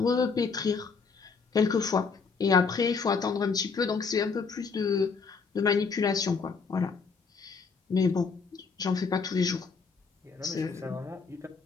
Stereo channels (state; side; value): quieter; right; 5.1 dB